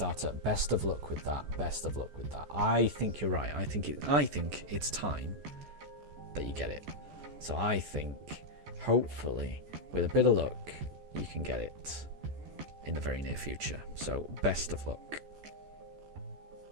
Best of luck with that. Best of luck with that. I think you're right. I think it's time that you get it. So I think, hopefully, with a bit of luck, you can get it in the very near future. So best of luck.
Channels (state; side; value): late; left; 14 ms